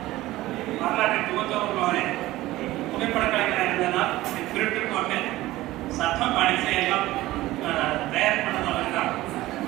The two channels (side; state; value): left; quieter; 17.1 dB